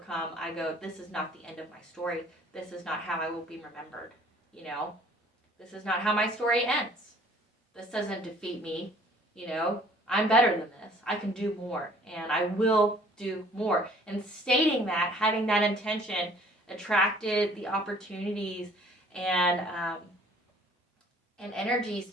I go, this is not the end of my story. This is not how I will be remembered. This is not how my story ends. This doesn't defeat me. I'm better than this. I can do more, and I will do more. And stating that, having that intention, attracted the opportunities and energies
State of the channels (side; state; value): both; normal; correlation 0.55